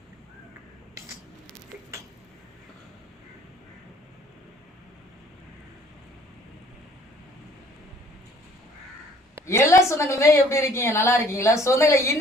எல்லா சொந்தங்களுமே எப்படி இருக்கீங்க? நல்லா இருக்கீங்களா? சொந்தங்களை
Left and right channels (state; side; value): normal; both; correlation 0.57